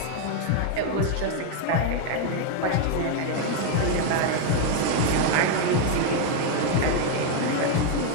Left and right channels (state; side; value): different; both; correlation 0.01